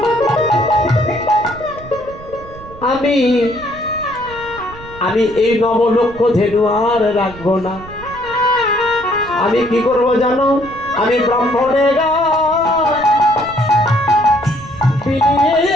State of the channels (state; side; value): noise; right; rumble, 17 dB below the sound